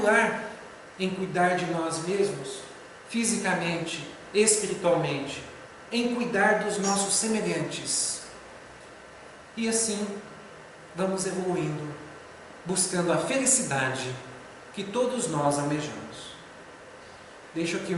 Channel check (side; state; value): both; identical; correlation 1.00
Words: lar, em cuidar de nós mesmos, fisicamente, espiritualmente, em cuidar dos nossos semelhantes. E assim, vamos evoluindo, buscando a felicidade que todos nós almejamos. Deixo aqui o